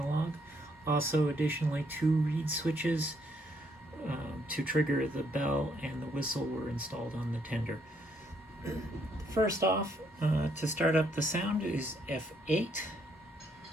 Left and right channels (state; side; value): normal; both; correlation 0.71